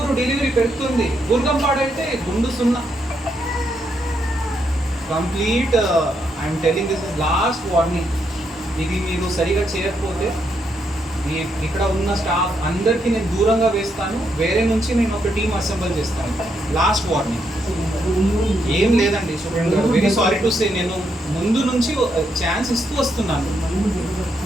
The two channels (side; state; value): both; normal; correlation 0.78